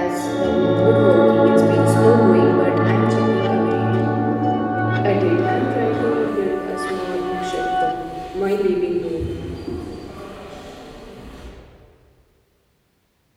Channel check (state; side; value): identical; both; correlation 1.00